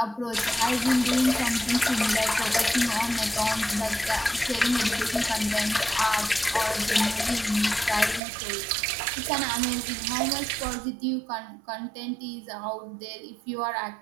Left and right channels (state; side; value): drops out; left; at 8.2 s